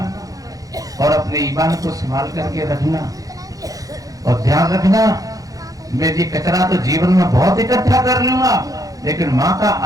और अपने ईमान को संभाल करके रखना और ध्यान रखना, मैं ये कचरा तो जीवन में बहुत इकट्ठा कर लूंगा लेकिन माँ का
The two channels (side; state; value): left; late; 0.17 ms